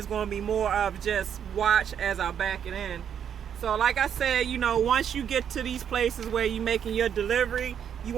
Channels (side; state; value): left; quieter; 8.5 dB